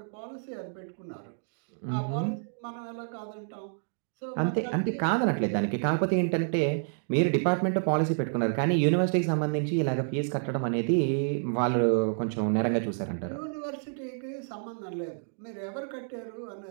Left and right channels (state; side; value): silent; left; digital silence